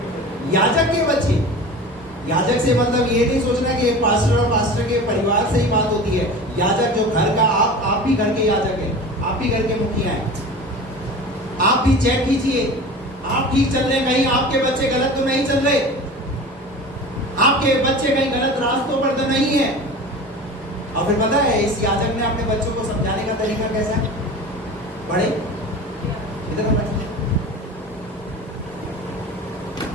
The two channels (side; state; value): both; normal; correlation 0.35